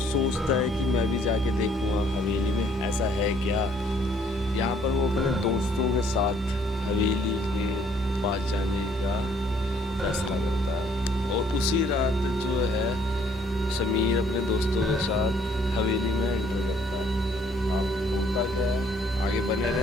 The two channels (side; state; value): both; normal; correlation 0.63